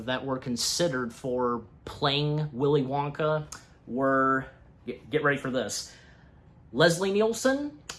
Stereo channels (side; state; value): both; identical; correlation 1.00